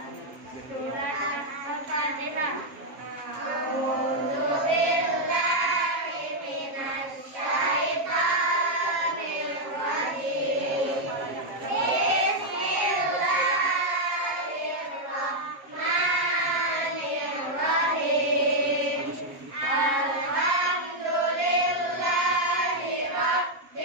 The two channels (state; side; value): late; left; 7.4 ms